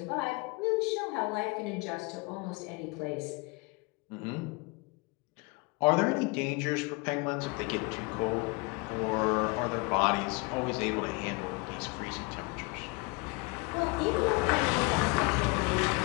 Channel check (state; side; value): quieter; right; 27.1 dB